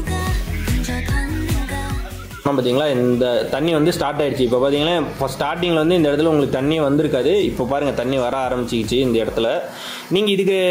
பார்த்தீங்களா, இந்த தண்ணி வந்து ஸ்டார்ட் ஆயிடுச்சு. இப்போ பார்த்தீங்கன்னா, இப்போ ஸ்டார்டிங்கில் வந்து இந்த இடத்துல உங்களுக்கு தண்ணி வந்திருக்காது. இப்போ பாருங்கள் தண்ணி வர ஆரம்பிச்சிக்கிச்சு இந்த இடத்துல.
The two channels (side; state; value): both; identical; correlation 1.00